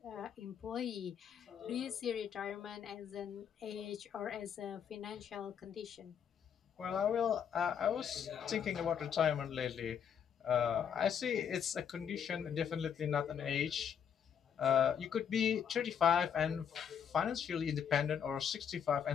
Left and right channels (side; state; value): right; quieter; 8.0 dB